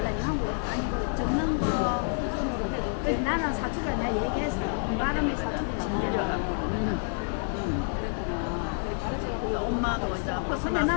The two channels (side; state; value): right; silent; 59 dB below the other